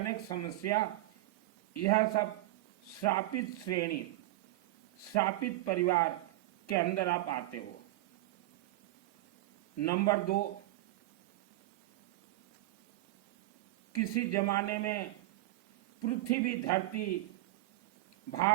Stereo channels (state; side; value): quieter; left; 17.1 dB